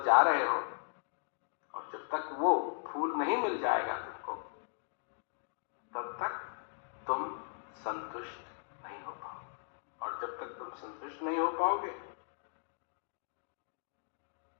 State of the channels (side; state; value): right; silent; digital silence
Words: जा रहे हो, और जब तक वो फूल नहीं मिल जाएगा तुमको, तब तक तुम संतुष्ट नहीं हो पाओगे। और जब तक तुम संतुष्ट नहीं हो पाओगे,